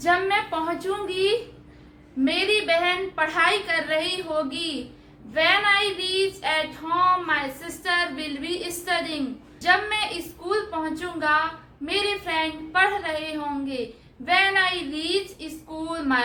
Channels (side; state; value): both; identical; correlation 1.00